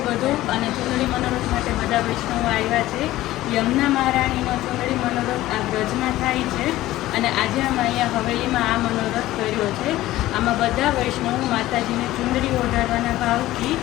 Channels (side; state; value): right; quieter; 15.9 dB